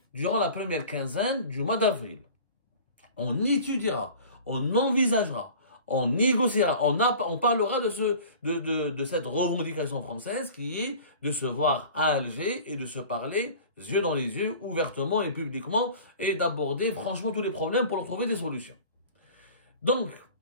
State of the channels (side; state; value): both; inverted; correlation -0.43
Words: durant la première quinzaine du mois d'avril. On étudiera, on envisagera, on négociera, on parlera de cette revendication française qui est de se voir à Alger et de se parler yeux dans les yeux, ouvertement et publiquement, et d'aborder franchement tous les problèmes pour leur trouver des solutions. Donc,